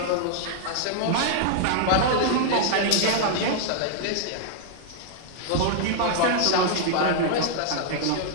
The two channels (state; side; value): different; both; correlation -0.01